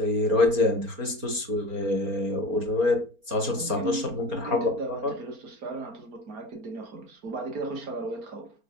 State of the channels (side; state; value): left; late; 4.3 ms